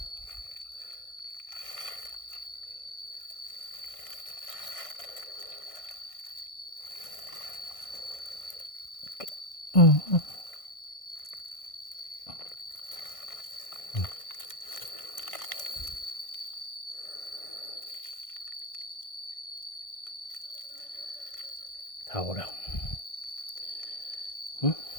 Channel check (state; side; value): late; right; 1.6 ms